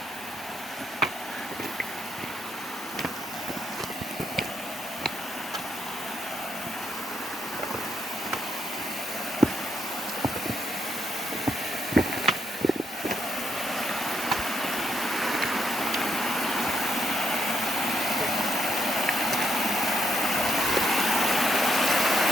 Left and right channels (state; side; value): normal; both; correlation 0.76